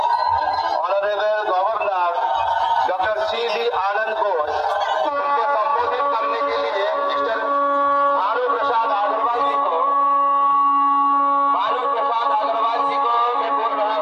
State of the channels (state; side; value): identical; both; correlation 1.00